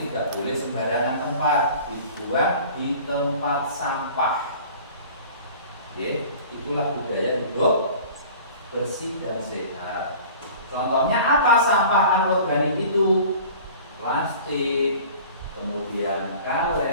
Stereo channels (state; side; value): inverted; both; correlation -0.44